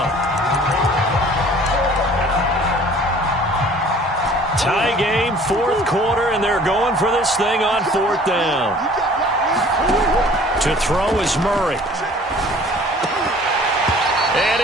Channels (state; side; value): normal; both; correlation 0.50